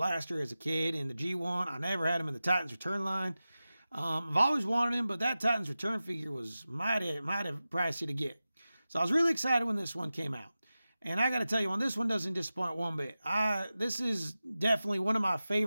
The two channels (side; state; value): both; inverted; correlation -0.94